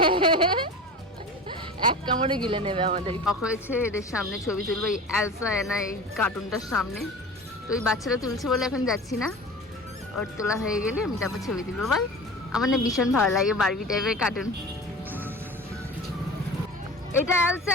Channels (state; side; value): normal; both; correlation 0.35